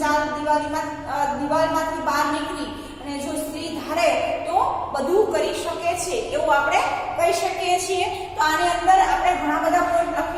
ચાર દિવાલમાંથી બહાર નીકળી અને જો સ્ત્રી ધારે તો બધું કરી શકે છે એવું આપણે કહી શકીએ છીએ. તો આની અંદર આપણે ઘણા બધા પોઈન્ટ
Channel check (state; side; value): identical; both; correlation 1.00